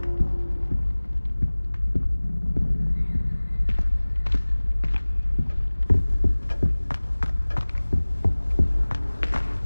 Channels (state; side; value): inverted; both; correlation -1.00